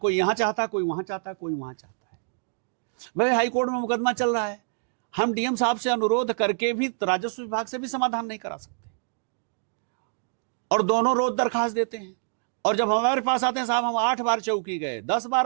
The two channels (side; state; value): left; silent; digital silence